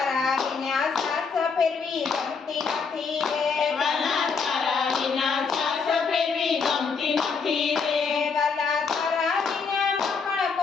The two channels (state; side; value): quieter; right; 5.3 dB